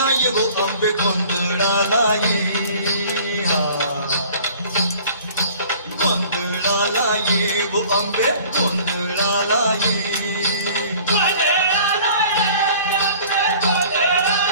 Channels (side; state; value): both; inverted; correlation -0.48